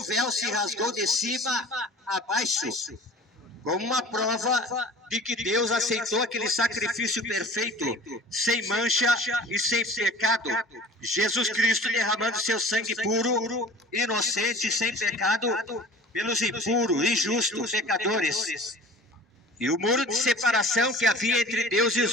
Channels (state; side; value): normal; both; correlation 0.43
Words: véu se rasgou de cima a baixo, como uma prova de que Deus aceitou aquele sacrifício perfeito, sem mancha e sem pecado. Jesus Cristo derramando seu sangue puro, inocente, sem pecado, pelos impuros, injustos, pecadores. E o muro de separação que havia entre Deus e